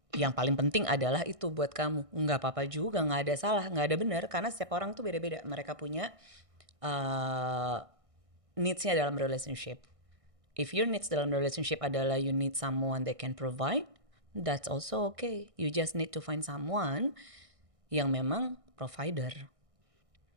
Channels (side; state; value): left; late; 1.6 ms